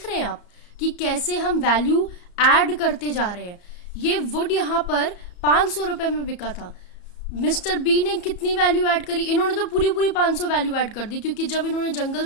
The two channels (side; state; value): right; late; 34 ms